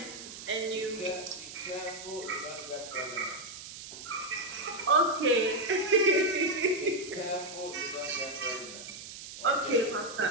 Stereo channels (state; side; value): noise; right; hiss, 12 dB below the sound